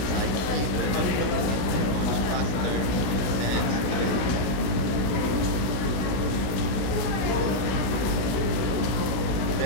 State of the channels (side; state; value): right; late; 16 ms